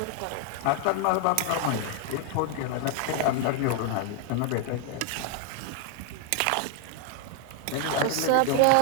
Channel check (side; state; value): both; different; correlation 0.00